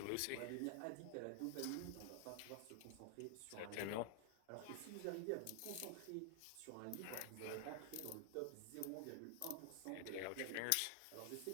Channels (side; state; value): both; different; correlation 0.00